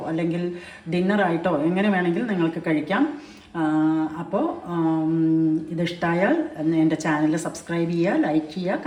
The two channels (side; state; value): both; identical; correlation 1.00